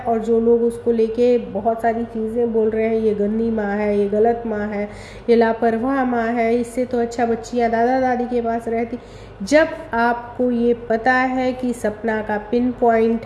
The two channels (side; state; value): both; identical; correlation 1.00